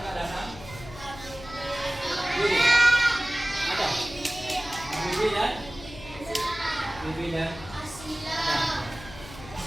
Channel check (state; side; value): noise; left; hum, 15 dB below the sound